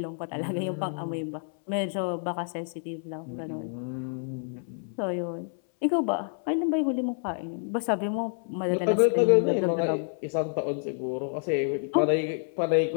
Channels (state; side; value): silent; right; 59 dB below the other